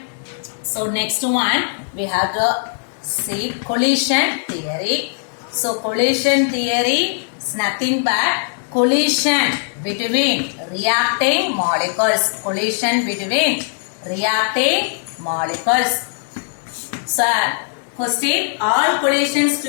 So next one we have to see collision theory. So collision theory is nothing but collision between reacting molecules. Collision between reacting molecules. So question, all collisions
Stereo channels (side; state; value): right; silent; digital silence